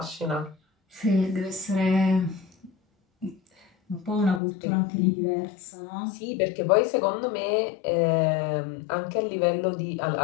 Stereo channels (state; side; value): drops out; right; at 4.4 s